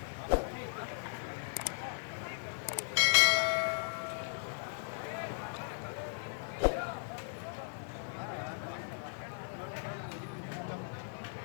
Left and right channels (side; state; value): right; silent; digital silence